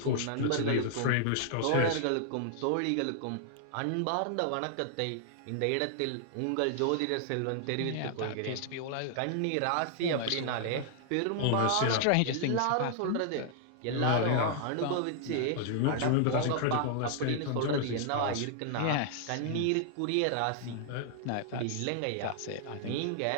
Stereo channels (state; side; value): different; both; correlation 0.00